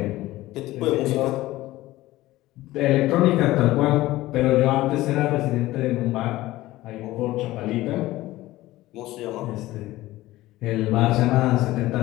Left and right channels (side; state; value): right; quieter; 17.1 dB